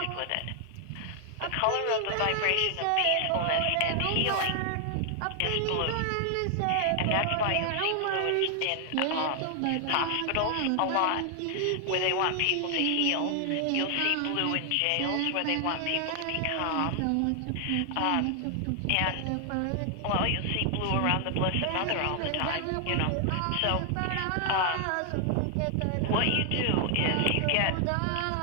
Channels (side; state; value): both; different; correlation 0.00